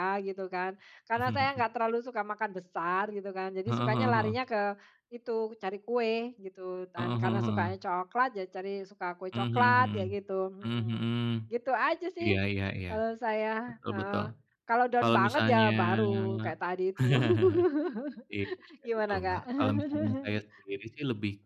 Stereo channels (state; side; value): identical; both; correlation 1.00